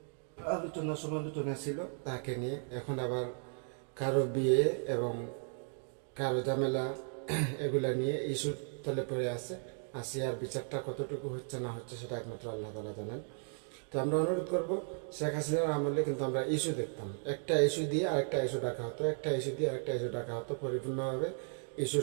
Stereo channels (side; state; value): left; silent; 54 dB below the other